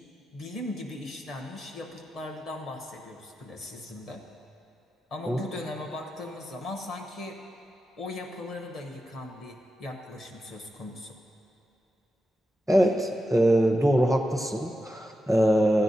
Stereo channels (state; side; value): normal; both; correlation 0.90